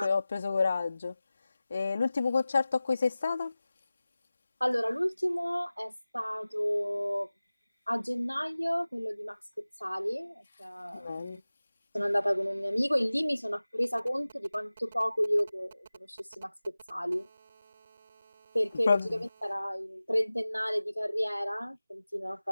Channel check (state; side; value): inverted; both; correlation -0.97